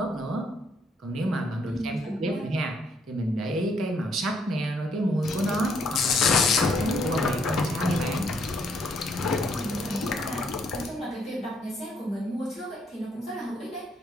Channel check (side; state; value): both; normal; correlation 0.70